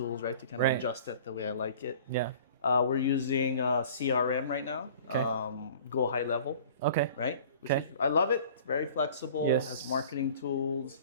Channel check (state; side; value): inverted; both; correlation -0.47